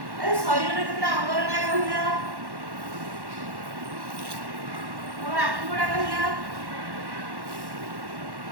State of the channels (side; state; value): left; late; 1.1 ms